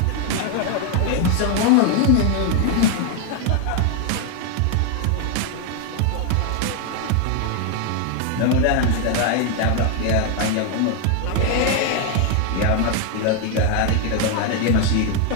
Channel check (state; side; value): different; both; correlation 0.01